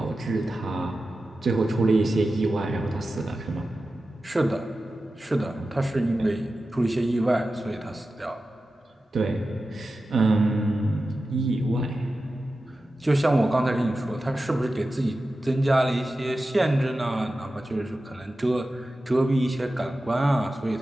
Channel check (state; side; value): normal; both; correlation 0.93